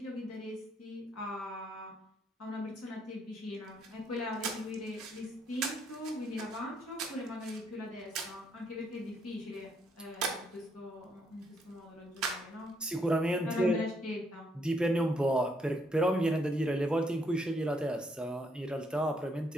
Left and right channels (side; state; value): both; normal; correlation 0.72